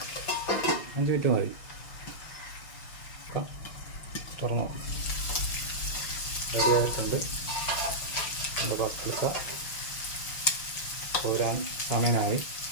5 മിനിറ്റ് മതി. തുറന്നു റെഡിയായിട്ടുണ്ട്. നമ്മുടെ പസ്ലിക്ക കോരാൻ സമയമായി.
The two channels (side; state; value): right; late; 5.9 ms